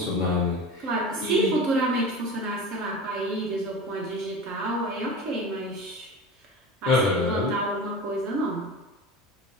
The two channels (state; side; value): normal; both; correlation 0.32